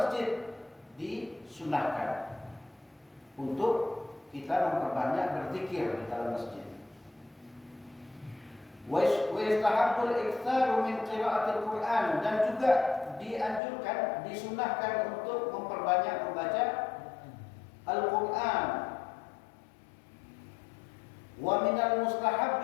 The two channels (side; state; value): right; drops out; at 13.6 s